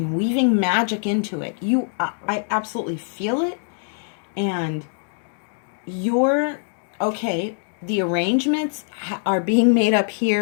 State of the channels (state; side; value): silent; right; digital silence